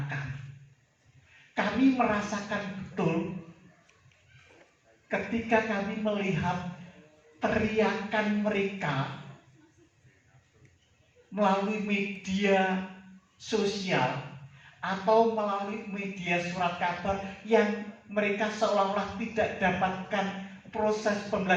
kami. Kami merasakan betul ketika kami melihat teriakan mereka melalui media sosial atau melalui media surat kabar yang mereka seolah-olah tidak dapatkan proses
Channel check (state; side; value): identical; both; correlation 1.00